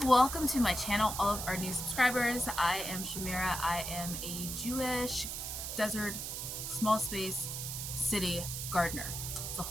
welcome to my channel, all of our new subscribers. I am Shamira. I am a Jewish desert small space city gardener. It's a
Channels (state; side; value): noise; right; hiss, 5 dB below the sound